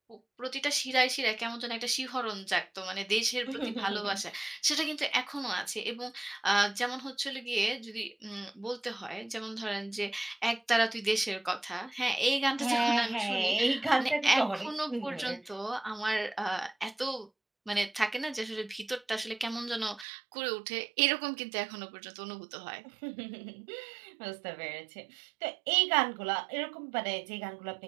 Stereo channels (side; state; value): left; drops out; at 20.1 s